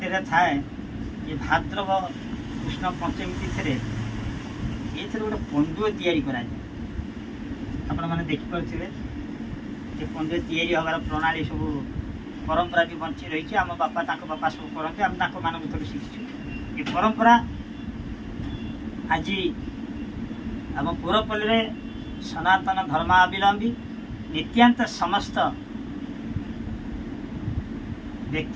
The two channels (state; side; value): identical; both; correlation 1.00